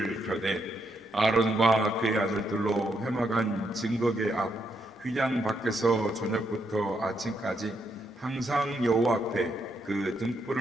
켜되 아론과 그의 아들들로 회막한 증거궤 앞 휘장 밖에서 저녁부터 아침까지 항상 여호와 앞에 그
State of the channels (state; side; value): normal; both; correlation 0.78